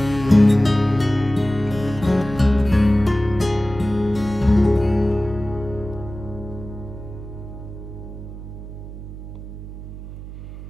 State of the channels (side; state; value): right; noise; hum, 12 dB below the sound